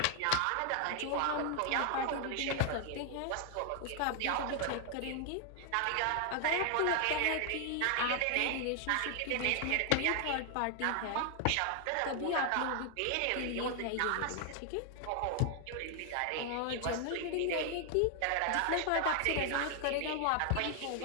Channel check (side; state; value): both; different; correlation 0.00